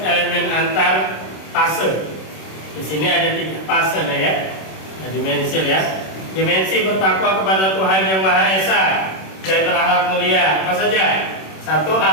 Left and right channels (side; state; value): right; late; 26 ms